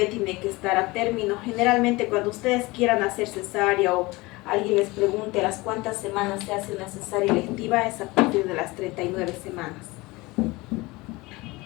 tiene que estar a término. Generalmente cuando ustedes quieran hacer cesárea o alguien les pregunte a las cuántas semanas se hace una cesárea electiva, es a partir de las 39 semanas.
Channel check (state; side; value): quieter; right; 22.3 dB